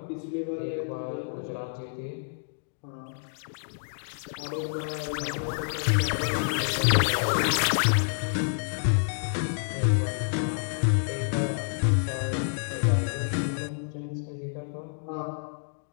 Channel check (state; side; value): silent; right; digital silence